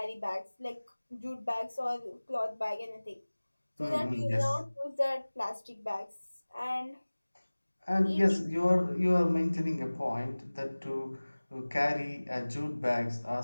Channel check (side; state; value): both; inverted; correlation -1.00